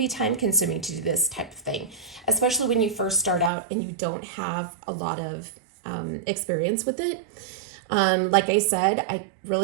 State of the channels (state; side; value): drops out; left; at 3.5 s